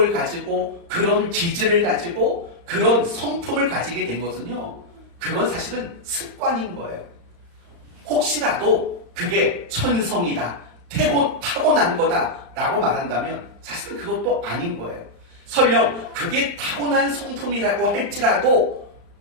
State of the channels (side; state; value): left; late; 35 ms